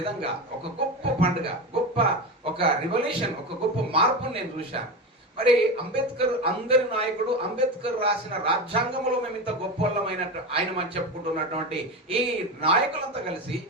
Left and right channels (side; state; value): both; normal; correlation 0.21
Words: ఒక గొప్ప పండుగ, ఒక రివల్యూషన్, ఒక గొప్ప మార్పును నేను చూశాను. మరి అంబేద్కర్ అందరి నాయకుడు, అంబేద్కర్ రాసిన రాజ్యాంగంలో మేము ఇంత గొప్పవాళ్ళమైనట్టు ఆయన మనం చెప్పుకుంటున్నటువంటి ఈ నాయకులంతా కలిసి